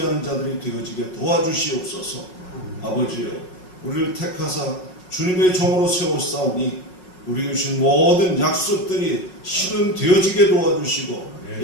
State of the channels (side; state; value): right; late; 5.5 ms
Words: 자들이 되어지게 도와주시옵소서. 아버지여, 우리를 택하사 주님의 종으로 세우사오니 우리에게 주신 모든 약속들이 실현되어지게 도와주시고